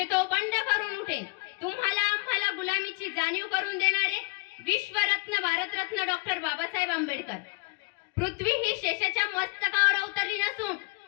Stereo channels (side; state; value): right; quieter; 27.5 dB